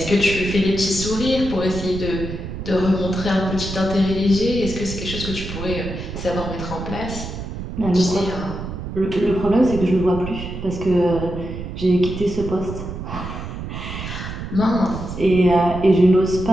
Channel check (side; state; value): right; noise; rumble, 8 dB below the sound